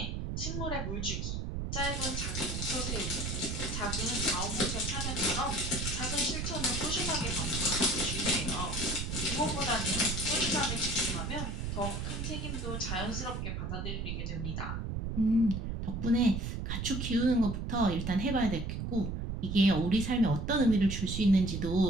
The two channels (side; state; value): right; noise; rumble, 3 dB below the sound